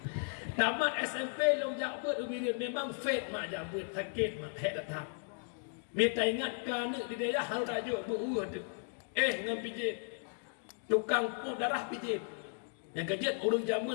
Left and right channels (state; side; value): silent; right; 54 dB below the other